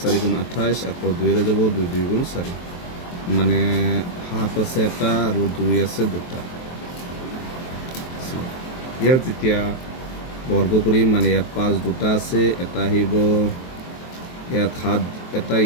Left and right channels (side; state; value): right; late; 23 ms